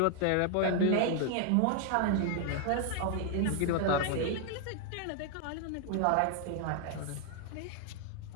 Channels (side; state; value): both; different; correlation 0.00